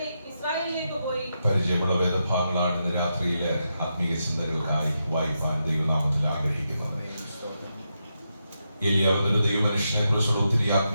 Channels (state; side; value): inverted; both; correlation -0.85